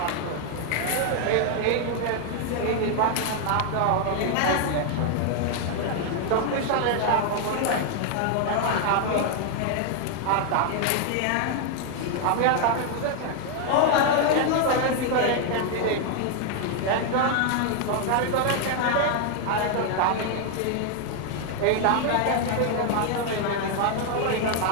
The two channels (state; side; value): different; both; correlation 0.00